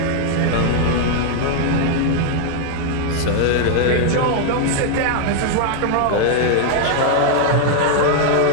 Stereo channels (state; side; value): different; both; correlation 0.00